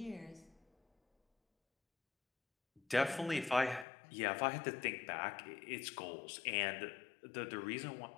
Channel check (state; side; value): drops out; right; at 3.9 s